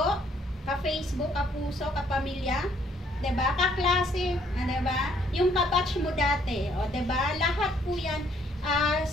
Ka-Facebook? Ka-puso? Ka-pamilya? Diba? Kaklase? Diba? Yung kabatch mo dati, o diba? Lahat po yan.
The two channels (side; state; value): both; normal; correlation 0.66